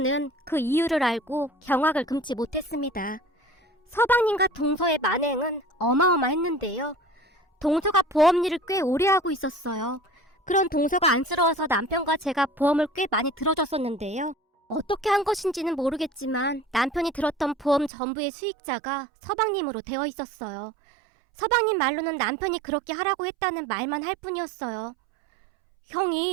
그 이유를 알고 경악을 금치 못했습니다. 서방님과 동서의 만행은 어마어마했는데요. 동서가 보험 일을 꽤 오래 하고 있었어요. 그런 동서가 안쓰러워서 남편과 제가 보험을 꽤 많이 들어줬었는데요. 어떻게 한 것인지는 모르겠지만 남편이 들었던 보험 전부의 수익자가 서방님으로 되어 있었어요. 서방님 말로는 남편이 그렇게 하라고 했다는 말만 할 뿐이었어요.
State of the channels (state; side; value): drops out; left; at 17.9 s